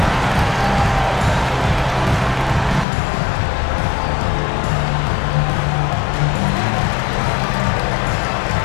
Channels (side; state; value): right; drops out; at 2.9 s